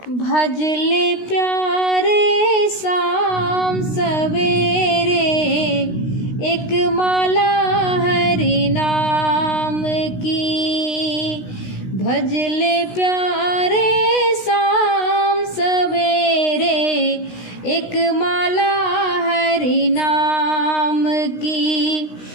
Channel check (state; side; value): late; right; 16 ms